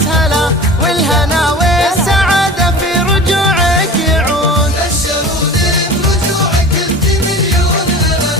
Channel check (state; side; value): normal; both; correlation 0.36